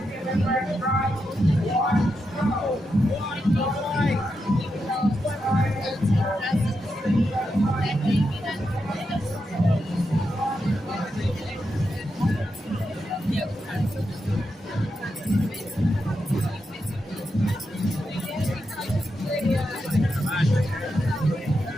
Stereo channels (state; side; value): normal; both; correlation 0.86